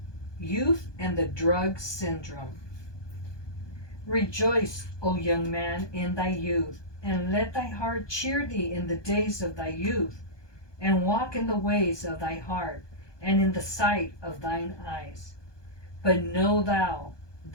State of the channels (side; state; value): right; late; 1.2 ms